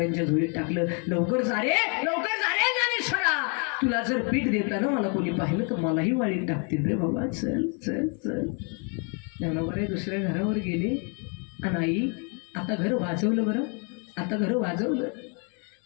झोळीत टाकलं. लवकर जा रे ज्ञानेश्वरा, तुला जर पीठ देताना मला कोणी पाहिलं तर मलाही वाळीत टाकतील रे बाबा, चल चल चल. ज्ञानोबराय दुसऱ्या घरावर गेले आणि आई आता घर वाजवलं बरं, आता घर वाजवलं.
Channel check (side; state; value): right; quieter; 37.6 dB